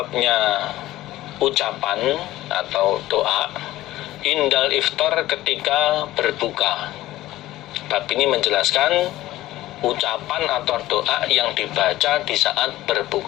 ucapan atau doa indal iftar, ketika berbuka. Bab ini menjelaskan ucapan atau doa yang dibaca di saat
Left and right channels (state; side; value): quieter; right; 15.8 dB